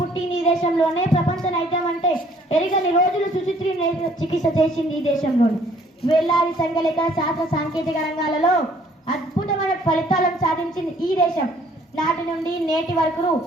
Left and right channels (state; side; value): normal; both; correlation 0.60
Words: ఈ దేశంలోనే. ప్రపంచ నైతం అంటే ఎరిగని రోజులు సుచిత్రి చికిత్స చేసింది ఈ దేశంలోనే. వేలాది సంఖ్యలేక శాస్త్ర సాంకేతిక రంగాలలో అద్భుతమైన ఫలితాలను సాధించింది ఈ దేశం. నాటి నుండి నేటి వరకు